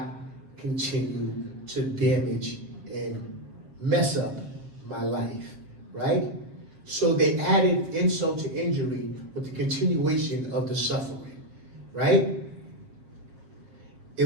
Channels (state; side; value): late; left; 7.5 ms